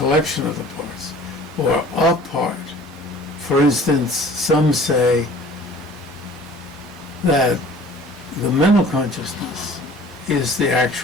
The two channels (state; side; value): normal; both; correlation 0.48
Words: of the parts or a part. For instance, some say that the mental consciousness is the